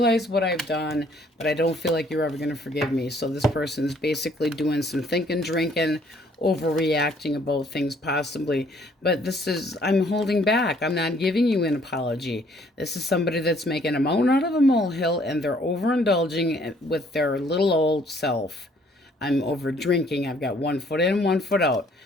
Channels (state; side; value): normal; both; correlation 0.62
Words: what I've done, but I don't feel like you're ever going to forgive me. So this person's basically doing some thinking, drinking, overreacting about things possibly. But this is, I'm holding back. I'm not giving you an apology. This is somebody that's making a mountain out of a molehill, and they're overindulging with their little old self. I'm over drinking. I've got 1 foot in, 1 foot out.